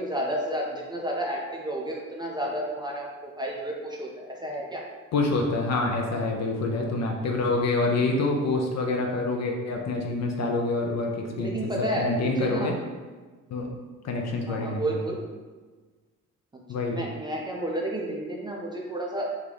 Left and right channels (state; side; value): normal; both; correlation 0.26